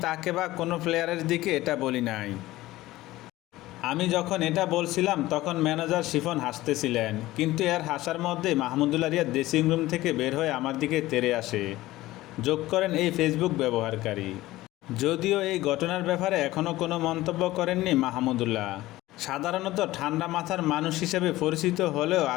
তাকে বা কোনো প্লেয়ারের দিকে এটা বলি নাই। আমি যখন এটা বলছিলাম তখন ম্যানেজার শিফন হাসতেছিলেন, কিন্তু এর হাসার মধ্যেই মাহমুদুল্লাহ রিয়াদ ড্রেসিং রুম থেকে বের হয়ে আমার দিকে তেড়ে আসে, যোগ করেন এই ফেসবুক ব্যবহারকারী। যদিও এই ঘটনার ব্যাপারে এখনও কোনো মন্তব্য করেননি মাহমুদুল্লাহ। সাধারণত ঠান্ডা মাথার মানুষ হিসেবে পরিচিত হলেও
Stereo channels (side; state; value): right; quieter; 17.2 dB